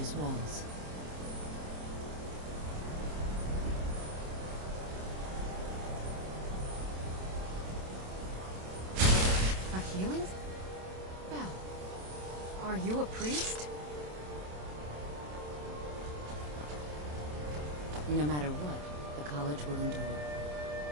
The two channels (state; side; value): late; left; 27 ms